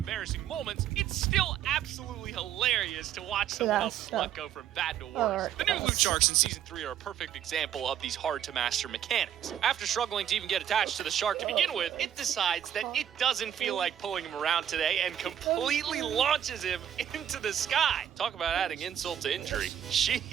moments, it's still absolutely hilarious to watch someone else's luck go from bad to worse. The new loot sharks in Season 3 are a perfect example of these hard-to-master mechanics. After struggling to even get attached to the shark to begin with, it decides that it doesn't feel like pulling him around today and completely launches him into the sky. Talk about adding insult to injury.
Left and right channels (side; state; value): left; quieter; 9.9 dB